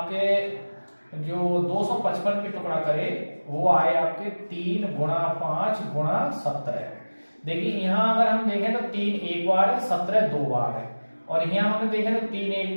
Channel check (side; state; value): both; inverted; correlation -1.00